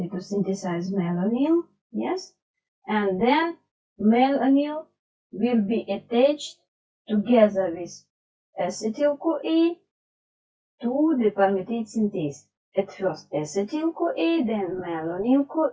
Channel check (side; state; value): both; identical; correlation 1.00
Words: to synthesize malonyl, yes, and then malonyl will be attached together with acetyl-CoA to the palmitate synthase. At first acetyl-CoA, then